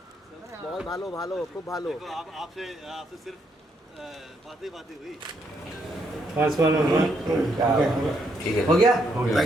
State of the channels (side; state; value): both; normal; correlation 0.75